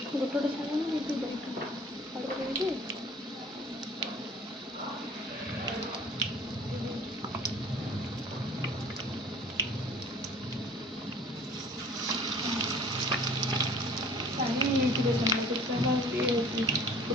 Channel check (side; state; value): both; normal; correlation 0.49